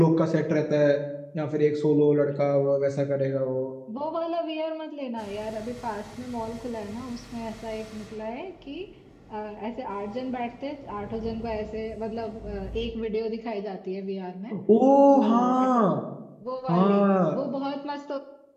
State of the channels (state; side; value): identical; both; correlation 1.00